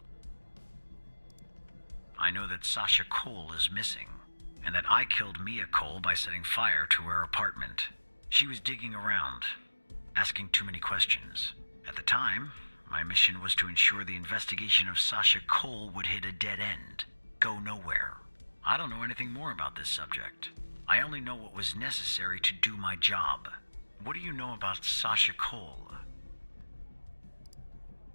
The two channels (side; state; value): both; inverted; correlation -1.00